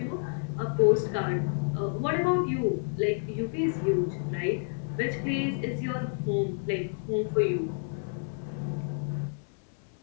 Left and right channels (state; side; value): silent; right; digital silence